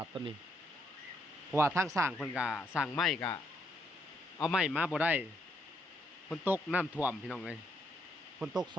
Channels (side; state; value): both; normal; correlation 0.75